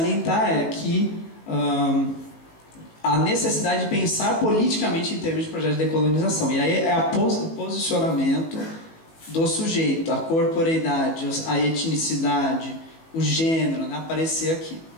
é que a necessidade de pensar politicamente em termos de projeto de decolonização. E aí é o posicionamento do sujeito, a corporeidade, a etnicidade, o gênero, né, aparecer aqui.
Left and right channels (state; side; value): late; right; 18 ms